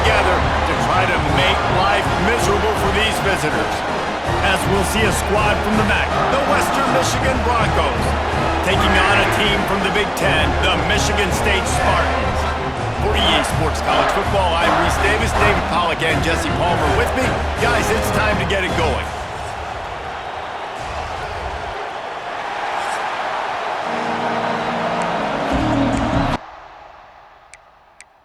to try to make life miserable for these visitors. As we'll see a squad from the MAC, the Western Michigan Broncos, taking on a team from the Big Ten, the Michigan State Spartans. For EA Sports College Football, I'm Reese Davis, David Pollack, and Jesse Palmer with me. Guys, it's time to get it going.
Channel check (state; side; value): identical; both; correlation 1.00